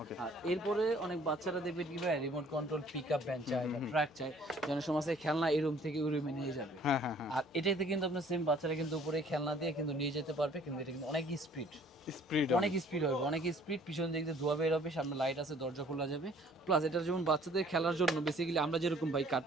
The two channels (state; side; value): normal; both; correlation 0.56